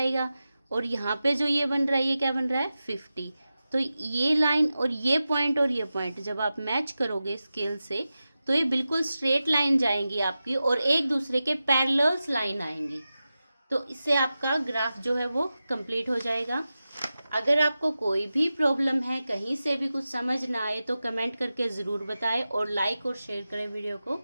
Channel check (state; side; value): inverted; both; correlation -0.93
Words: और यहाँ पे जो ये बन रहा है ये क्या बन रहा है 50। तो ये लाइन और ये पॉइंट जब आप मैच करोगे स्केल से तो ये बिल्कुल स्ट्रेट लाइन जाएंगी आपकी और एक दूसरे के पैरेलल्स लाइन आएंगी। तो इससे आपका ग्राफ जो है वो कंप्लीट हो जाएगा। अगर आपको कोई भी प्रॉब्लम है, कहीं से भी कुछ समझ ना आए तो कमेंट करके ज़रूर बताएं और लाइक और शेयर करें वीडियो को।